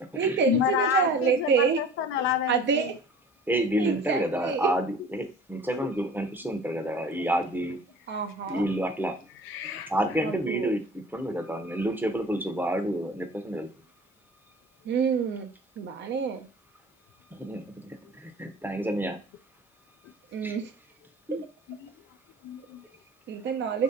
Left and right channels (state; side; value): normal; both; correlation 0.43